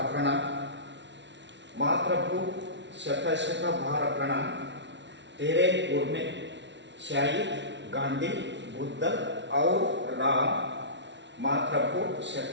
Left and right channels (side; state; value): left; late; 0.52 ms